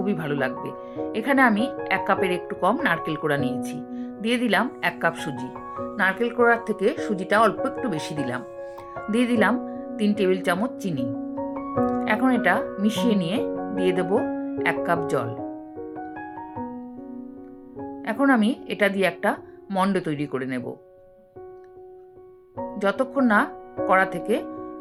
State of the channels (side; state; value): both; identical; correlation 1.00